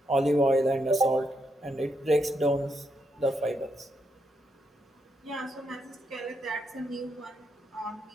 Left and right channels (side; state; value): both; normal; correlation 0.79